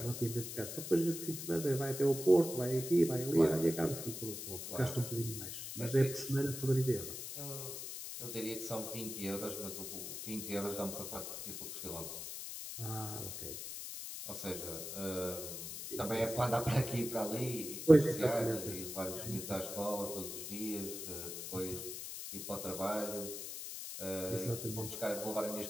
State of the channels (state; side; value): noise; left; hiss, 7 dB below the sound